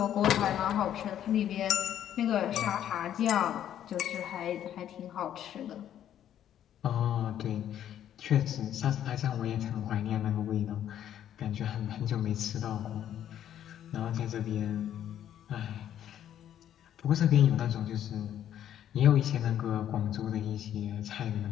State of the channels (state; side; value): quieter; right; 10.7 dB